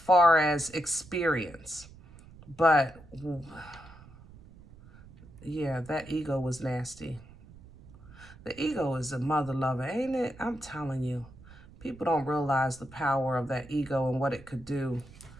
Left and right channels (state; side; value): noise; right; rumble, 20 dB below the sound